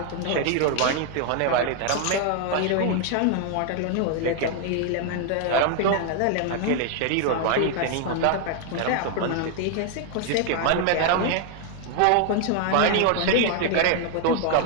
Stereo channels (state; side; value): different; both; correlation 0.00